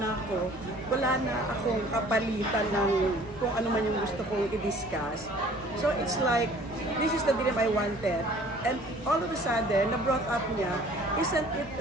ako, wala na akong kapalitan ng kung ano man yung gusto kong i-discuss. So, it's like, this is the dream I wanted. And all of a sudden, na-brought up niya, isn't it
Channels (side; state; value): right; noise; hum, 22 dB below the sound